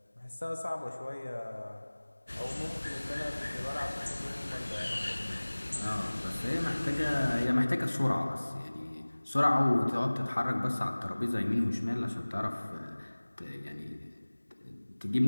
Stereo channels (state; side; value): inverted; both; correlation -1.00